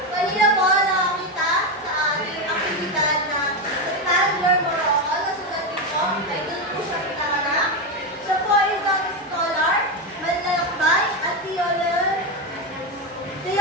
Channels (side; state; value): both; normal; correlation 0.11